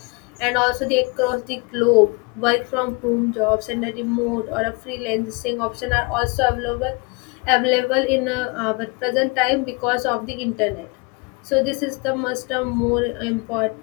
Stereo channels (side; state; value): right; quieter; 29.3 dB